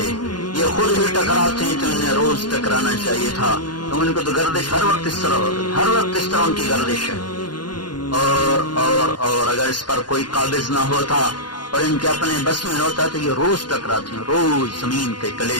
یہ خود ہی ٹکراتے ہیں۔ تو انہیں روز ٹکرانا چاہیے تھا، تو ان کو تو گردش ہر وقت اس طرح ان کی گردش ہے۔ اور اگر اس پر کوئی قابض نہ ہوتا اور ان کے اپنے بس میں ہوتا تو یہ روز ٹکراتے ہیں، روز زمین کے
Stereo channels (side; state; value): right; late; 0.71 ms